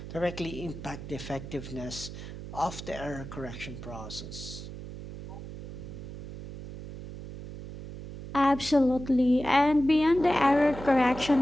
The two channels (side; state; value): right; noise; hum, 11 dB below the sound